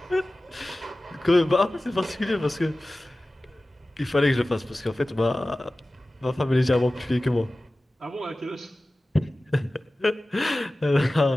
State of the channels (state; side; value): normal; both; correlation 0.96